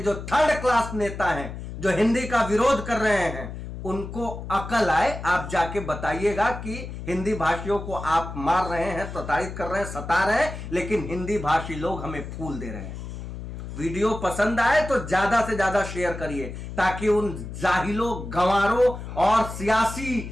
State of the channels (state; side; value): noise; left; hum, 9 dB below the sound